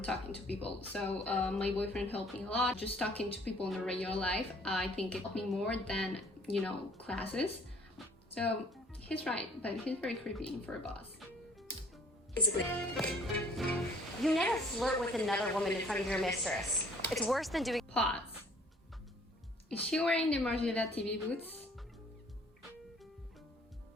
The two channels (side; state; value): both; normal; correlation 0.56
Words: talking to people. So my boyfriend helped me a lot. Just talking to people in the regular life, I think it helped me more than, you know, classes. So he's right, but he's very creepy for a boss. You never flirt with another woman in front of your mistress. It's worse than doing. Pause. Is she wearing the Margiela TV boots?